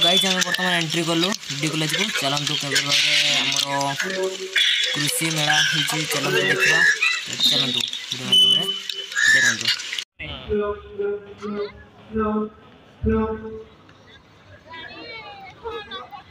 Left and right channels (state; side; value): identical; both; correlation 1.00